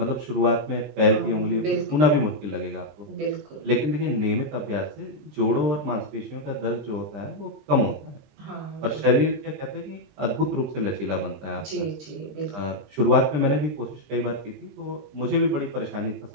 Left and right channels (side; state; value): left; late; 20 ms